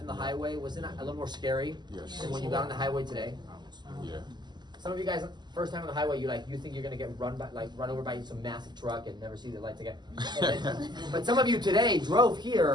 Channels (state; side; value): late; left; 0.21 ms